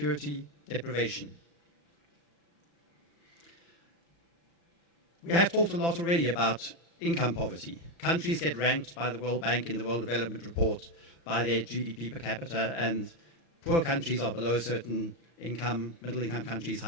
deprivation. We have talked a lot already about income poverty. Countries get ranked by the World Bank in the World Development Report by their GDP per capita, and poor countries are below a certain income, middle-income countries,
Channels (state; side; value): late; right; 34 ms